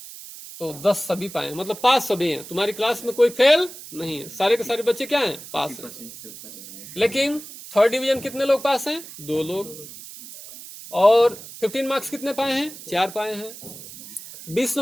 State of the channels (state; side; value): noise; right; hiss, 14 dB below the sound